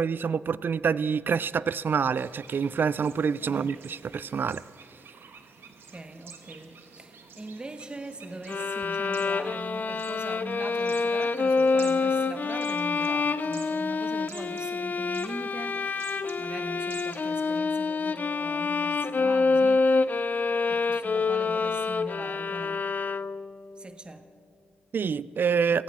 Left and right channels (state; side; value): normal; both; correlation 0.77